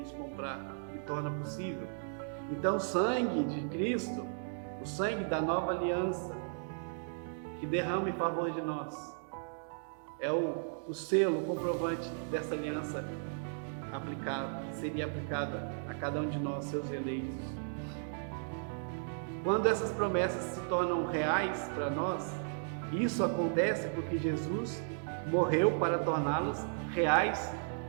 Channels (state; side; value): silent; left; digital silence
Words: comprar e torna possível. Então o sangue de Cristo, o sangue da nova aliança, que derrama em favor de nós, é o selo, o comprovante dessa aliança aplicada, que seria aplicada a cada um de nós, seus eleitos. Quando essas promessas se tornam reais para nós, isso acontece porque Jesus morreu para torná-las reais